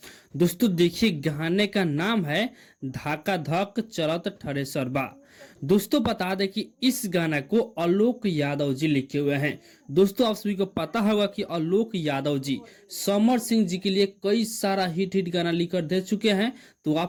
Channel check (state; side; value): identical; both; correlation 1.00